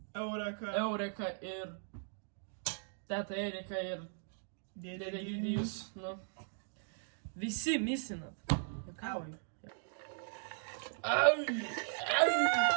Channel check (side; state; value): left; silent; digital silence